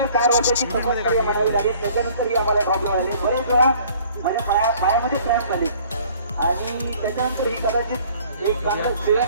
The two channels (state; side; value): inverted; both; correlation -0.54